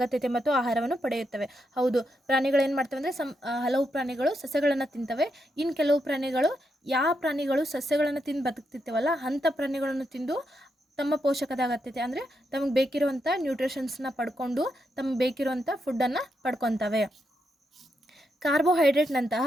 ಮತ್ತು ಆಹಾರವನ್ನು ಪಡೆಯುತ್ತವೆ. ಹೌದು, ಪ್ರಾಣಿಗಳು ಏನು ಮಾಡ್ತವೆ ಅಂದರೆ ಹಲವು ಪ್ರಾಣಿಗಳು ಸಸ್ಯಗಳನ್ನು ತಿಂತವೆ. ಇನ್ನು ಕೆಲವು ಪ್ರಾಣಿಗಳು ಯಾವ ಪ್ರಾಣಿಗಳು ಸಸ್ಯಗಳನ್ನು ತಿಂದು ಬದುಕ್ತಿರ್ತವಲ್ಲ ಅಂಥ ಪ್ರಾಣಿಗಳನ್ನು ತಿಂದು ತಮ್ಮ ಪೋಷಕದ ಅಗತ್ಯತೆ ಅಂದರೆ ತಮಗೆ ಬೇಕಿರುವಂಥ ನ್ಯೂಟ್ರಿಷನ್ಸ್ನ ಪಡ್ಕೊಂಡು ತಮಗೆ ಬೇಕಿರುವಂಥ ಫುಡ್ಡನ್ನು ಪಡ್ಕೊತವೆ. ಕಾರ್ಬೋಹೈಡ್ರೇಟ್ನಂತಹ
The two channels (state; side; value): normal; both; correlation 0.82